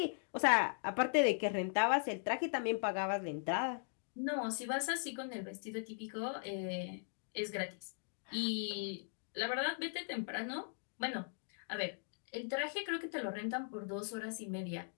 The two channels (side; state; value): right; silent; digital silence